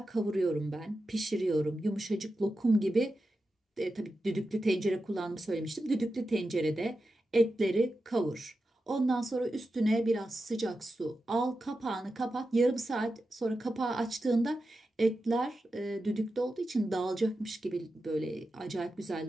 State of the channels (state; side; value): normal; both; correlation 0.90